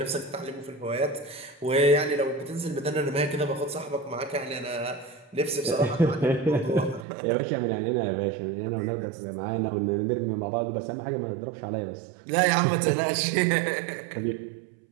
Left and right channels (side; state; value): left; drops out; at 7.1 s